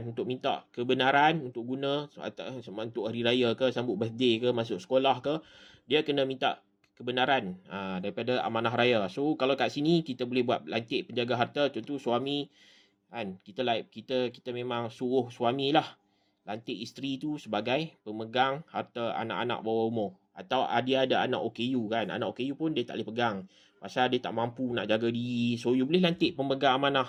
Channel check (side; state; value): both; identical; correlation 1.00